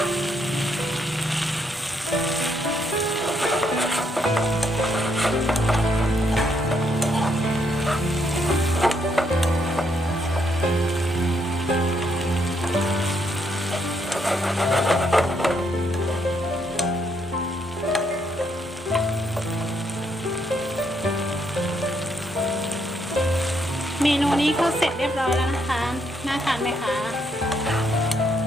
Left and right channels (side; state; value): both; normal; correlation 0.75